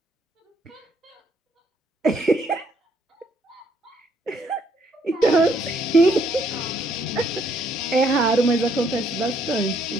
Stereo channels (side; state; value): both; normal; correlation 0.69